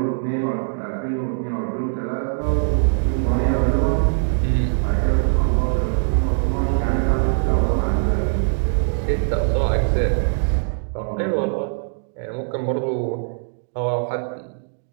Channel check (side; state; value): left; silent; digital silence